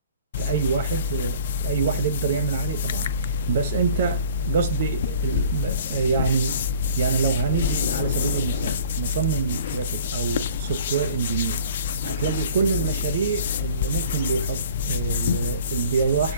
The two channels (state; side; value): inverted; both; correlation -0.49